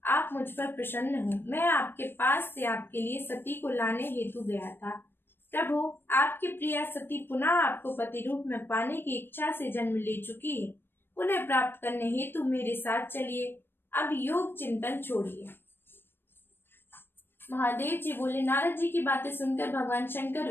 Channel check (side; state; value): right; late; 0.10 ms